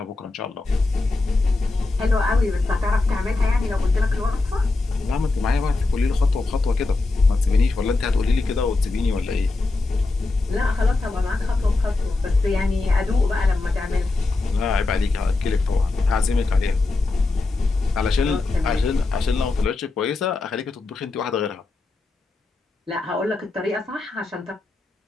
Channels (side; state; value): right; quieter; 3.4 dB